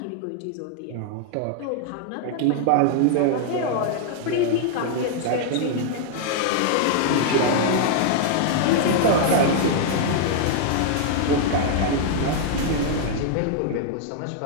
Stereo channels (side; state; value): both; different; correlation -0.01